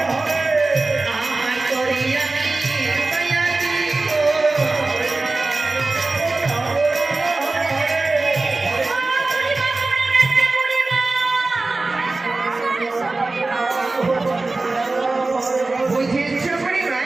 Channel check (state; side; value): quieter; left; 3.3 dB